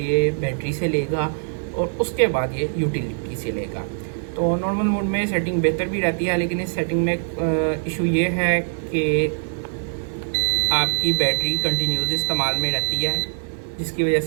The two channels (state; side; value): silent; left; 64 dB below the other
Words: बैटरी से लेगा और उसके बाद ये यूटिलिटी से लेगा। तो नॉर्मल मोड में सेटिंग बेहतर भी रहती है, लेकिन इस सेटिंग में इशू ये है कि आपकी बैटरी कंटिन्यूस इस्तेमाल में रहती है, जिसकी वजह